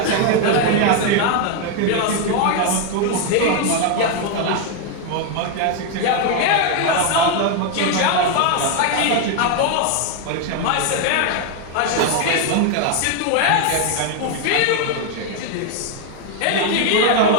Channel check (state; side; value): different; both; correlation 0.01